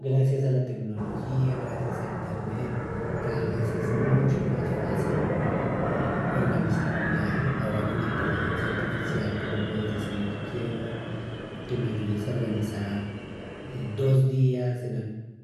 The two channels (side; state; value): both; identical; correlation 1.00